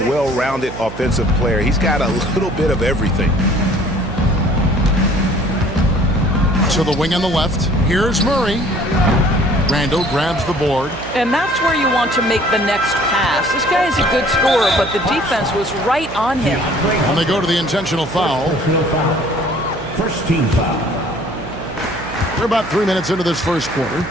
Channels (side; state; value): right; noise; hum, 12 dB below the sound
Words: offensive player. He's got a little bit of everything. To the wing on the left. Here's Murray. Randall grabs the board. And that's where you want to make the next pass. This guy is a good scorer, but the defense was right on him. And they go to the intentional foul. First team foul. We're about 3 minutes into this first quarter.